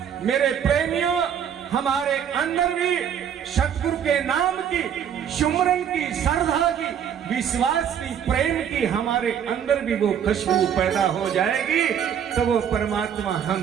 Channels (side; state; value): left; quieter; 8.6 dB